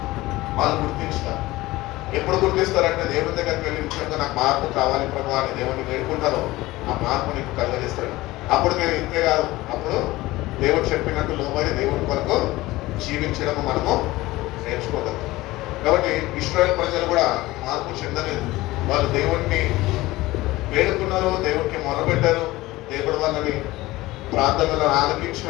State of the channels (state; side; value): quieter; right; 18.7 dB